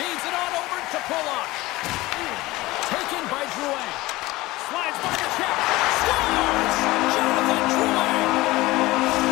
it on over to Pulock. Taken by Drouin. Slides by the check. Scores! Jonathan Drouin!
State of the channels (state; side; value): quieter; right; 19.5 dB